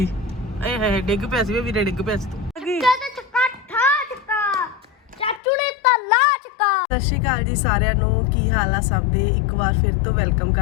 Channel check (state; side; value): drops out; right; at 5.4 s